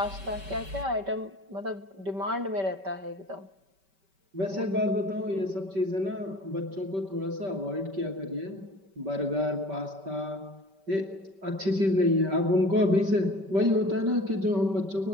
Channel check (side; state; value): left; late; 5.2 ms